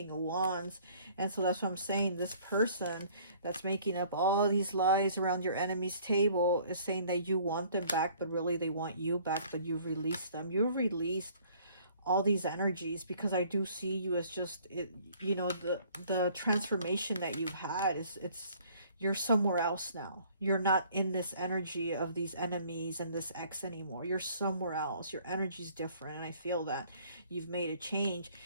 of Wands. And so that's what I'm saying. This person that's making up all these lies around your enemy's table is saying that you want them back, but really they want you back, but you've released them. You've released all these energies, because I do see you as just, you know, the transformation that you've had is, you're somewhere else now. You're not in this energy of these enemies and this ex anymore. You're somewhere else. Your energy's different, and I feel that you've made a change.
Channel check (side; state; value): both; inverted; correlation -0.56